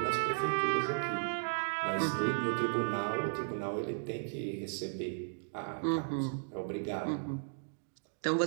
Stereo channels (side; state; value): left; silent; digital silence